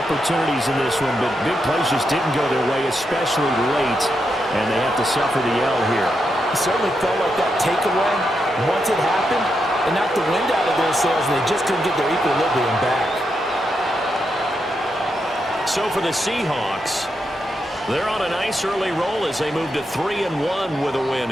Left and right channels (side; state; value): both; normal; correlation 0.84